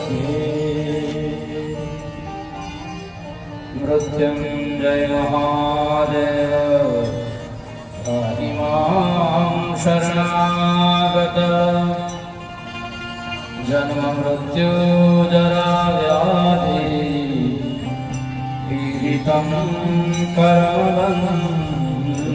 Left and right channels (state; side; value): identical; both; correlation 1.00